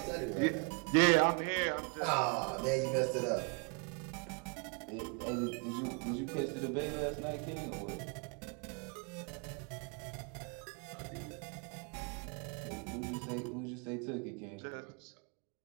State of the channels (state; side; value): quieter; left; 33.8 dB